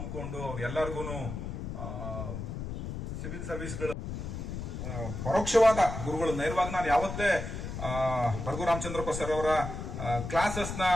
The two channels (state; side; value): noise; left; rumble, 6 dB below the sound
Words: ಎಲ್ಲರಿಗೂ ಸಿವಿಲ್ ಸರ್ವಿಸ್ಗಳು ಪರೋಕ್ಷವಾದ ಗುರುಗಳು, ನೇರವಾಗಿ ನಾನು ಯಾವತ್ತೇ ರಘು ರಾಮಚಂದ್ರಪ್ಪ ಸರ್ ಅವರ ಕ್ಲಾಸಸ್ ನ